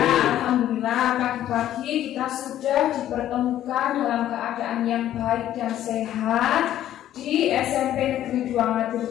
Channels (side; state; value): right; quieter; 12.2 dB